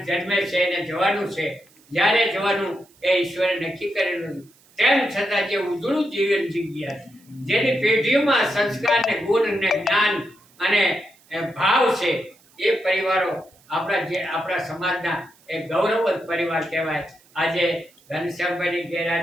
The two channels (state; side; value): noise; right; hiss, 30 dB below the sound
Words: જન્મે છે એને જવાનું છે. જ્યારે જવાનું એ ઈશ્વરે નક્કી કરેલું, તેમ છતાં જે ઉજળું જીવન જીવ્યા છે, જેની પેઢીઓમાં સંસ્કાર ને ગુણ ને જ્ઞાન અને ભાવ છે, એ પરિવારો આપણા સમાજના એક ગૌરવવંત પરિવાર કહેવાય. આજે ઘનશ્યામભાઈની